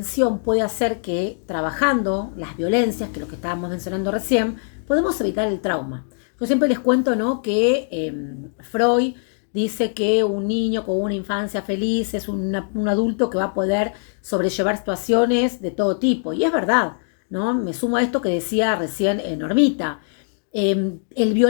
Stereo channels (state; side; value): silent; right; digital silence